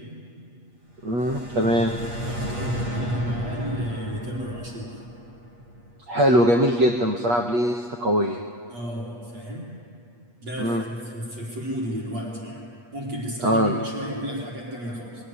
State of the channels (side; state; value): left; late; 8.4 ms